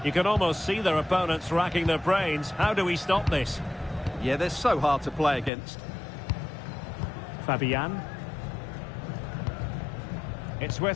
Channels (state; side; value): drops out; right; at 5.5 s